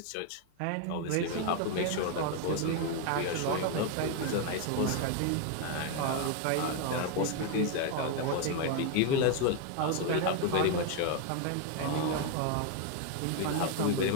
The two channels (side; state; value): both; different; correlation 0.01